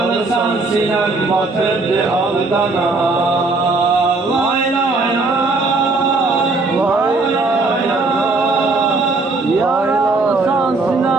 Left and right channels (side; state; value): left; quieter; 3.5 dB